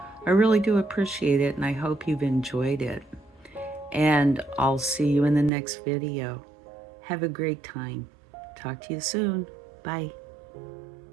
I really do appreciate it, and I hope you've enjoyed it. And I'll see you in the next video. Have a great time. Talk to you soon. Bye.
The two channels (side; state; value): left; drops out; at 5.5 s